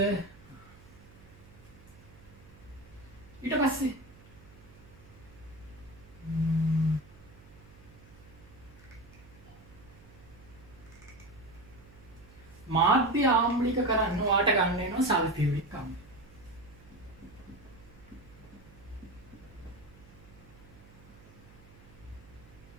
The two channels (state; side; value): noise; right; hum, 22 dB below the sound